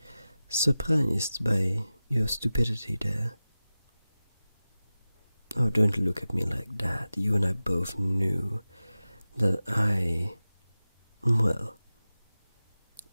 surprised by your stupidity there. Oh, don't look at me like that. You and I both knew that well,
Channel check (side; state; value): both; inverted; correlation -0.95